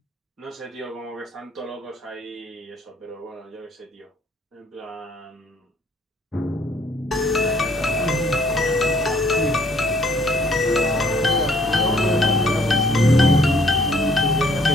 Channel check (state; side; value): normal; both; correlation 0.61